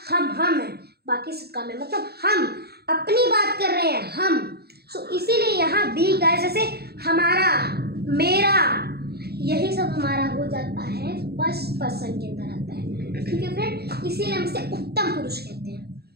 हम है बाकी सब कम है, मतलब हम अपनी बात कर रहे हैं हम। सो इसीलिए यहाँ वी गाइस, जैसे हमारा, मेरा, यही सब हमारा हो जाता है फर्स्ट पर्सन के अंदर आता है। ठीक है फ्रेंड, इसीलिए हम इसे उत्तम पुरुष कहते हैं।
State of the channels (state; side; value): late; left; 0.46 ms